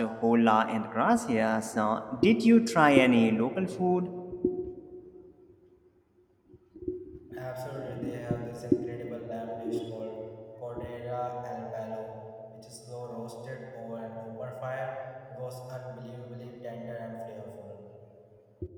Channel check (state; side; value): identical; both; correlation 1.00